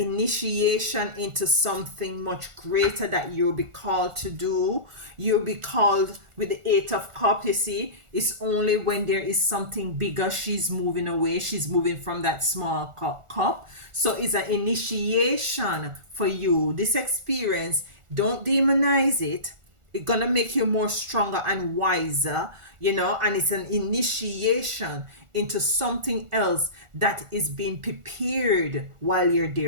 into something much greater that you'll be called to do. You'll be called with the Eight of Cups. You see, it's only when there is something bigger, she's moving away. She's moving from that small cup. So it's an initiation for you. This experience, don't demonize it. It's gonna make you more stronger and wiser, you know, and it's an initiation into something else that is being prepared while you're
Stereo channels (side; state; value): left; late; 1.4 ms